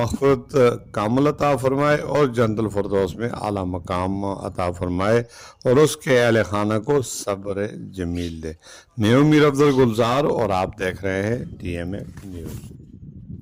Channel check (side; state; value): both; identical; correlation 1.00